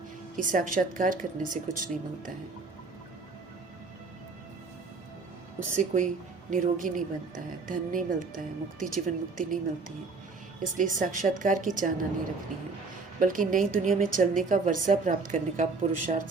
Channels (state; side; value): quieter; left; 4.2 dB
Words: कि साक्षात्कार करने से कुछ नहीं मिलता है, उससे कोई निरोगी नहीं बनता है, धन नहीं मिलता है, मुक्ति जीवन मुक्ति नहीं मिलती है। इसलिए साक्षात्कार की चाहना नहीं रखनी है, बल्कि नई दुनिया में चलने का वर्षा प्राप्त करने का पुरुषार्थ